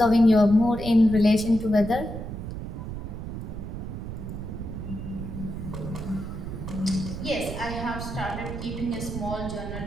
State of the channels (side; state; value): right; noise; rumble, 7 dB below the sound